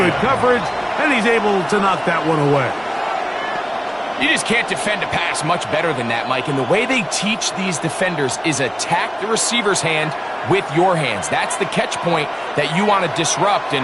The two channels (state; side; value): identical; both; correlation 1.00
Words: coverage, and he's able to knock that one away. You just can't defend a pass much better than that, Mike. And the way they teach these defenders is attack the receiver's hand with your hands. That's the catch point that you want to disrupt, and